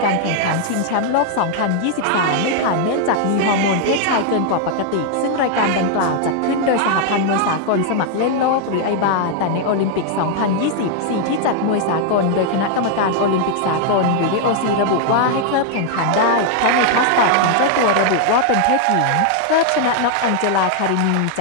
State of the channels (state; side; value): different; both; correlation 0.00